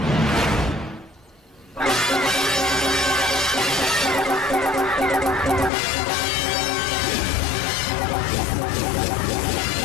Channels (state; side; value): drops out; right; at 5.7 s